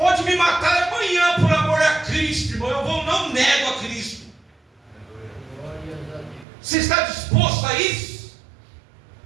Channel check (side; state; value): left; drops out; at 6.5 s